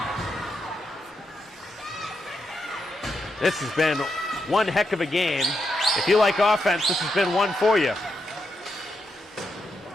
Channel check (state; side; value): normal; both; correlation 0.83